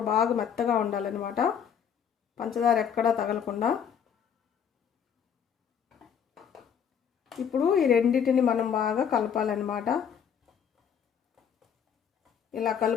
బాగా మెత్తగా ఉండాలన్నమాట. పంచదార ఎక్కడా తగలకుండా. ఇప్పుడు ఈ రెండింటిని మనం బాగా కలపాలన్నమాట. ఇలా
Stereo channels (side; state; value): right; quieter; 7.9 dB